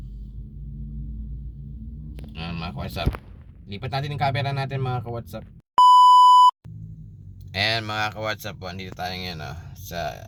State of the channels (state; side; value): identical; both; correlation 1.00